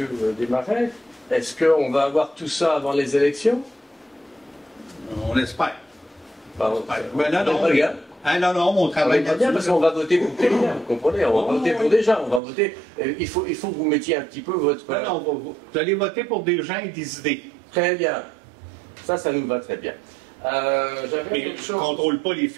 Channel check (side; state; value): left; drops out; at 12.4 s